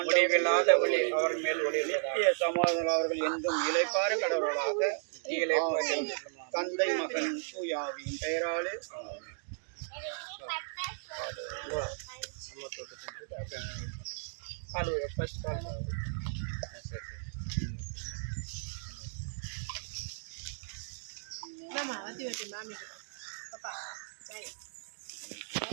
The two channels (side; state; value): left; silent; digital silence